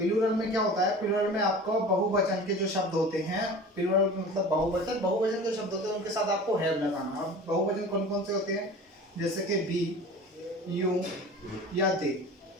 में क्या होता है, प्लूरल में आपको बहुवचन के जो शब्द होते हैं, प्लूरल मतलब बहुवचन, बहुवचन के शब्द होते हैं उनके साथ आपको हैव लगाना। अब बहुवचन कौन कौन से होते हैं, जैसे कि बी, यू या दे,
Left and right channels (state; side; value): normal; both; correlation 0.39